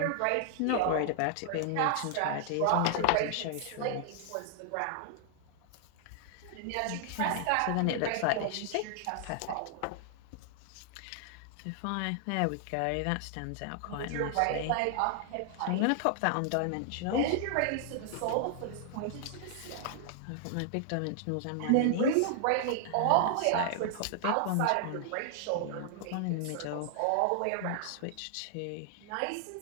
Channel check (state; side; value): different; both; correlation 0.00